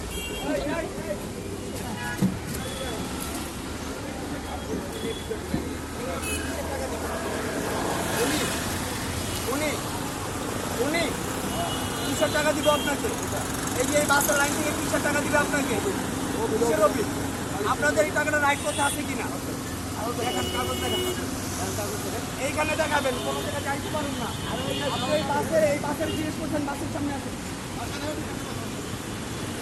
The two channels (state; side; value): identical; both; correlation 1.00